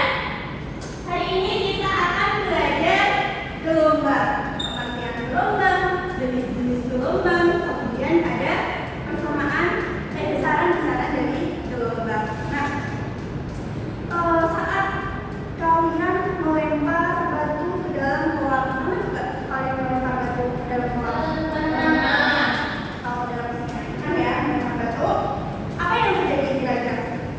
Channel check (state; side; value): identical; both; correlation 1.00